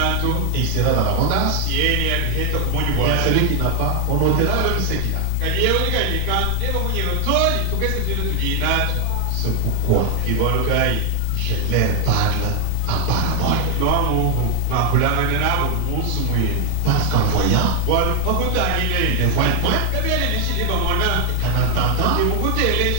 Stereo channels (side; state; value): both; different; correlation 0.00